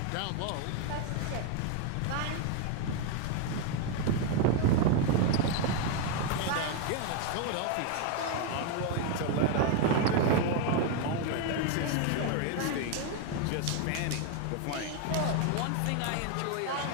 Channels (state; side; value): different; both; correlation 0.01